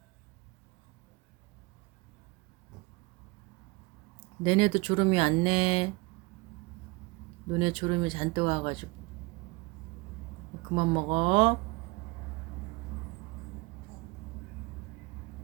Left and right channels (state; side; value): quieter; left; 25.8 dB